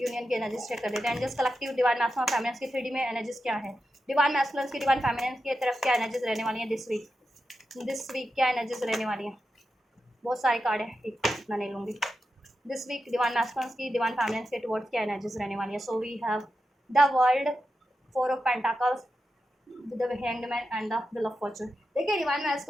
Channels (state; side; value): normal; both; correlation 0.89